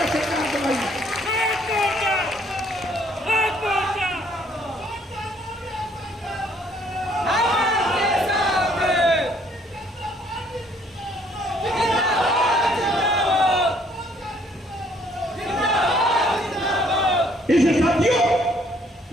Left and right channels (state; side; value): normal; both; correlation 0.64